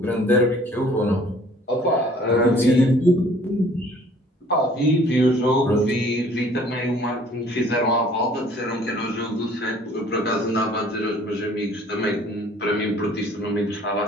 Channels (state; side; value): normal; both; correlation 0.55